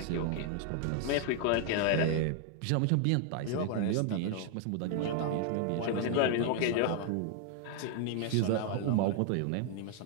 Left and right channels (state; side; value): different; both; correlation 0.00